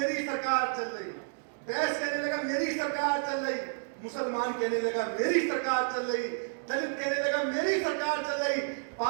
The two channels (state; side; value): silent; left; digital silence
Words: सरकार चल रही, बैस कहने लगा मेरी सरकार चल रही, मुसलमान कहने लगा मेरी सरकार चल रही, दलित कहने लगा मेरी सरकार चल रही,